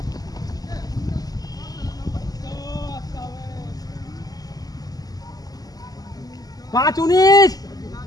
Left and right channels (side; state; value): right; late; 0.18 ms